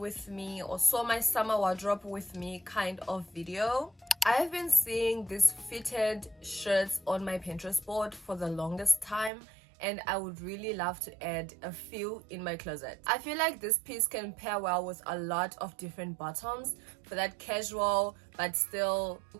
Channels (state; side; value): drops out; left; at 9.3 s